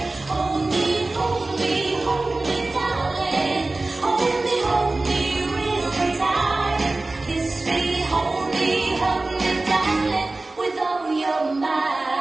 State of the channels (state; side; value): quieter; left; 3.1 dB